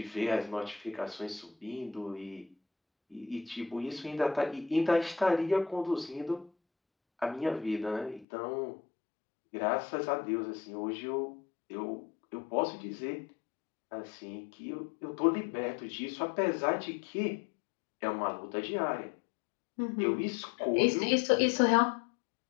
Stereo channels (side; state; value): right; drops out; at 8.2 s